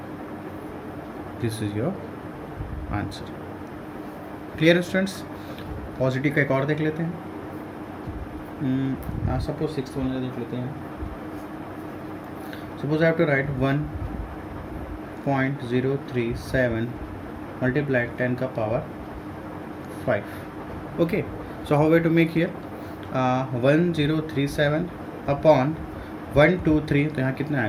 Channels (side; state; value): both; identical; correlation 1.00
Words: This is your answer. Clear students. Positive का एक और देख लेते हैं. सपोज 6th वन देख लेते हैं. Suppose I have to write 1.037 multiply 10 का power 5. Okay, so how way to make here 1037 upon 123, तो यहाँ कितना